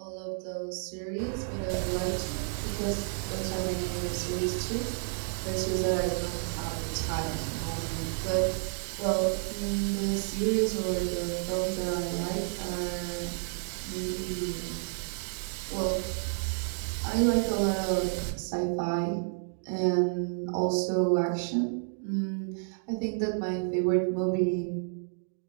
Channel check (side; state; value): left; silent; digital silence